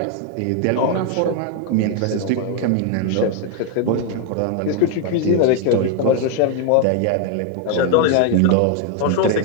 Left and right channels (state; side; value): different; both; correlation 0.01